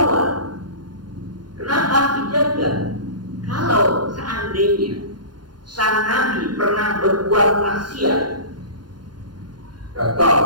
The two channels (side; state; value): left; late; 0.71 ms